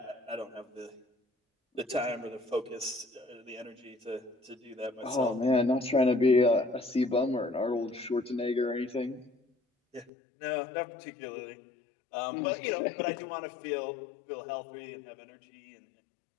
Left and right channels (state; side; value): drops out; right; at 10.1 s